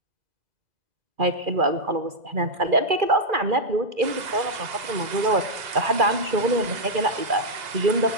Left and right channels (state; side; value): late; left; 2.0 ms